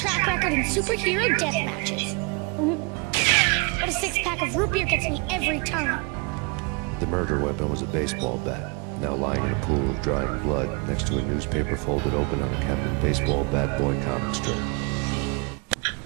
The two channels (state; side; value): quieter; left; 30.4 dB